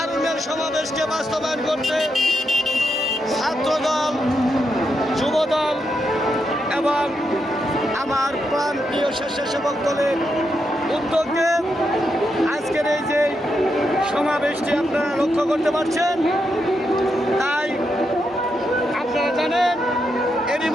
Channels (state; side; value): normal; both; correlation 0.83